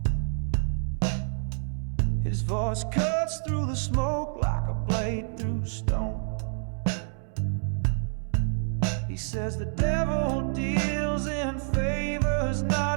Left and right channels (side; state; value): left; silent; 59 dB below the other